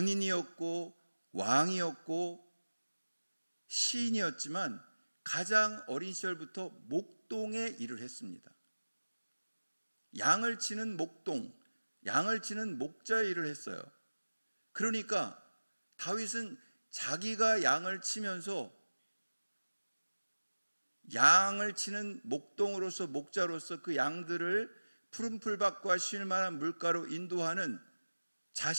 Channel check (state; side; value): inverted; both; correlation -1.00